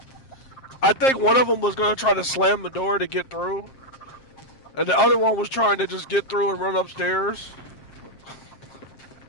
I think one of them was going to try to slam the door to get through. And the other one was trying to just get through and run upstairs.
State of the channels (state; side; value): late; right; 7.5 ms